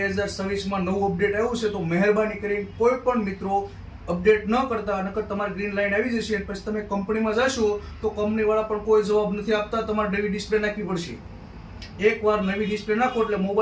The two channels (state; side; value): identical; both; correlation 1.00